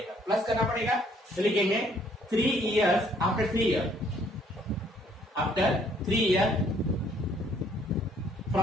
प्लस करना पड़ेगा, तो लिखेंगे 3 years after 3 years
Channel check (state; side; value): normal; both; correlation 0.64